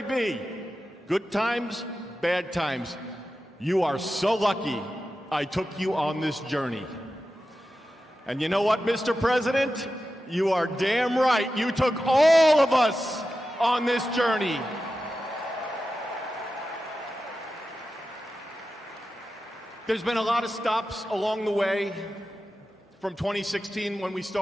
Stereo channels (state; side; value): normal; both; correlation 0.92